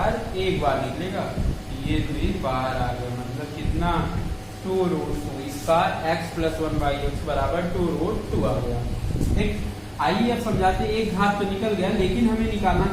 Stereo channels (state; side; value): identical; both; correlation 1.00